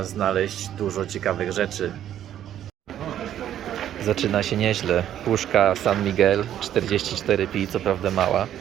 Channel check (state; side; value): quieter; left; 11.0 dB